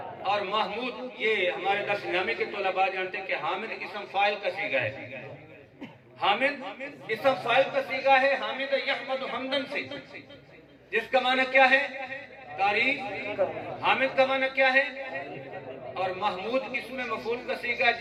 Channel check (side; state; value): both; identical; correlation 1.00